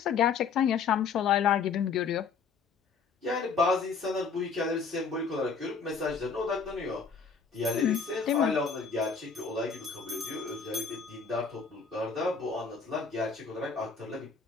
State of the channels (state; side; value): quieter; right; 5.4 dB